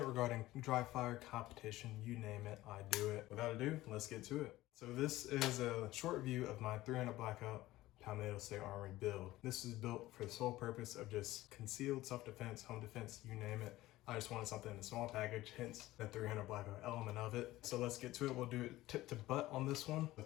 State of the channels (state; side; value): quieter; right; 16.8 dB